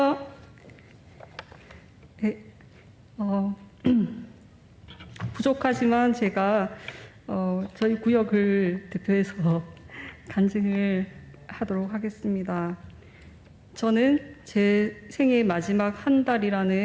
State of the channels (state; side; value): identical; both; correlation 1.00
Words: 네, 부족하지만 제가 저희 구역을 대표해서 간증을 하도록 하겠습니다. 저는 제 생애 마지막 한